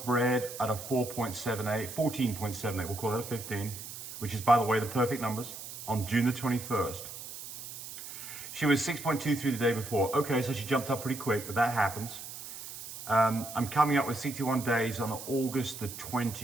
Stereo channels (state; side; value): noise; right; hiss, 11 dB below the sound